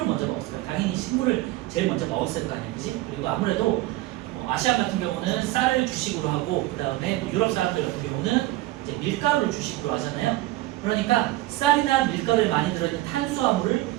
먼저 먹었을까요? 당연히 식물을 제일 먼저 먹었을 거 아니에요, 그지? 그리고 아무래도 아시아 같은 경우는 쌀을 주식으로 하고, 그 다음에 유럽 사람들 같은 경우는 이제 밀가루를 주식으로 하잖아요. 그러니까 쌀이나 밀가루에 많이 들어있는 탄수화물을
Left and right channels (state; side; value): quieter; left; 17.3 dB